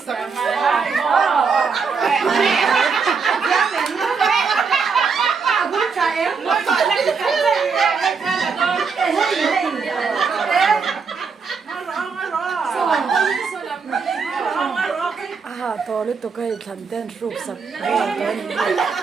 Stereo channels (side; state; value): left; quieter; 5.3 dB